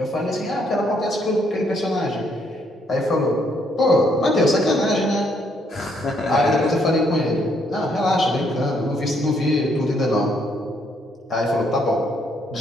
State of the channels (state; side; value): normal; both; correlation 0.71